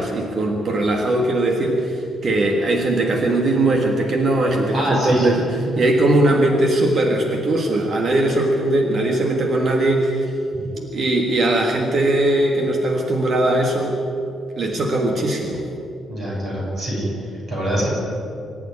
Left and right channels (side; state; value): both; normal; correlation 0.75